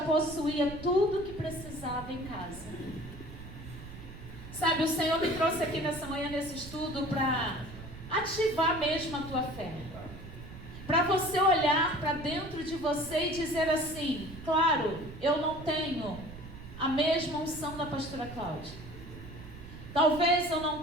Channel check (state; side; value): noise; right; rumble, 14 dB below the sound